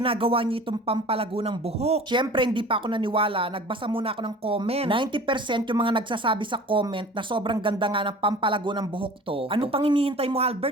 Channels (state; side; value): normal; both; correlation 0.42